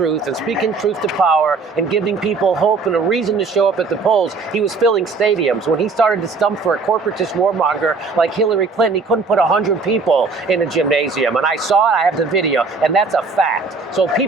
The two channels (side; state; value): left; quieter; 4.3 dB